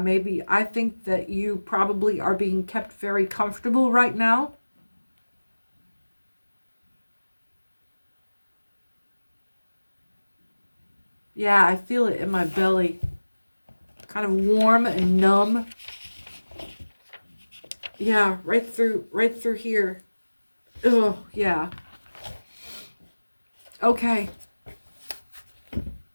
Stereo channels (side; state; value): both; inverted; correlation -1.00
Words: I think that you probably are being kept very comfortable right now. Yeah, I feel it in my belly. Kind of warm and numb. Yeah, right through here. Oh, yeah. Okay.